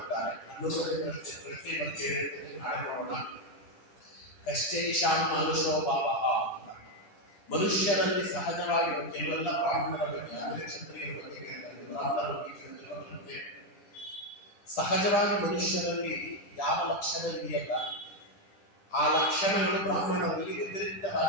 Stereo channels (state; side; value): late; right; 10 ms